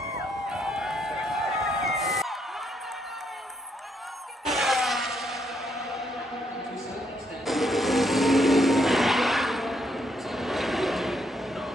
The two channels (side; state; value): both; normal; correlation 0.75